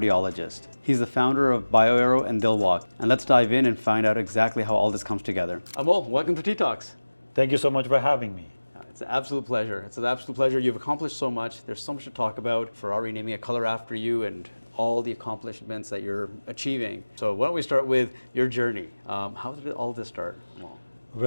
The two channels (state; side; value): inverted; both; correlation -1.00